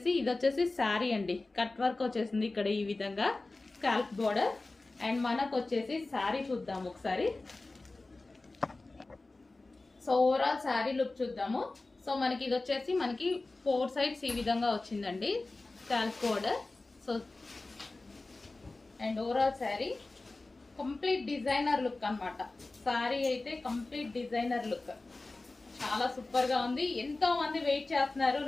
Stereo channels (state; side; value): quieter; right; 3.2 dB